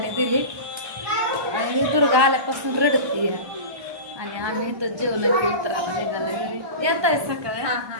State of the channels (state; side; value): late; left; 1.2 ms